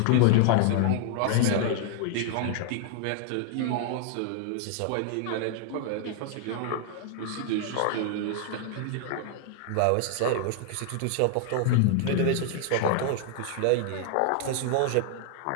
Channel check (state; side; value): different; both; correlation 0.00